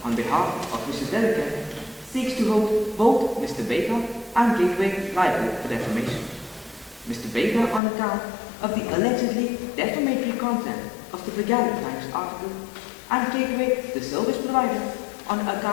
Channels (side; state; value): right; drops out; at 7.8 s